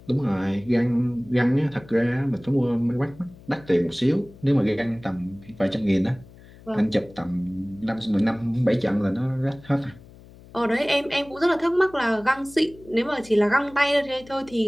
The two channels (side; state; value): left; noise; hum, 22 dB below the sound